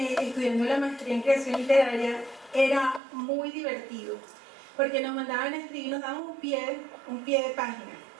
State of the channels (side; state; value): left; drops out; at 3.0 s